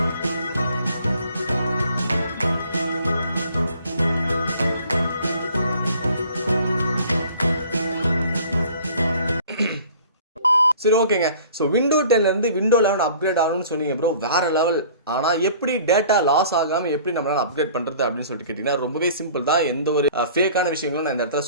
சரி ஓகேங்க. ஸோ விண்டோ 10ல இருந்து விண்டோ 11 அப்கிரேட் ஆகணும்னு சொன்னீங்க ப்ரோ, வேற லெவல். ஆனால் எப்படி டேட்டா லாஸ் ஆகாமல் எப்படி நம்மளால அப்கிரேட் பண்ணுறது அப்படின்னு சொல்லிட்டு கேட்டிங்கன்னா ரொம்பவே சிம்பிள் தான். எந்த ஒரு ஃபேக்கான விஷயங்களும் நான் இந்த இடத்துல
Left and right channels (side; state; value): both; inverted; correlation -0.50